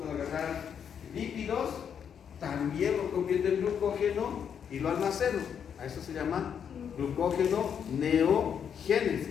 agarrar lípidos, también lo convierto en glucógeno y lo almaceno. A eso se llama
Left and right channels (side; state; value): right; quieter; 7.9 dB